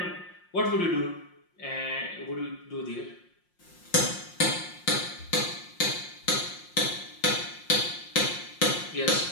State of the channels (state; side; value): late; right; 5.6 ms